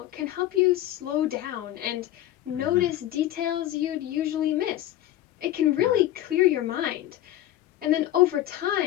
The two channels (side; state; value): right; quieter; 13.5 dB